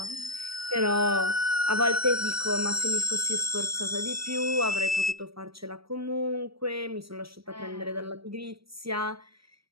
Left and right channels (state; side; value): late; left; 0.76 ms